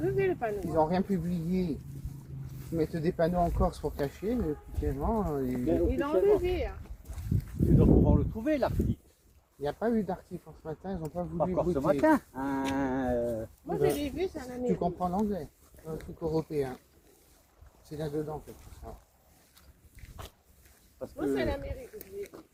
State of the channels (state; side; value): identical; both; correlation 1.00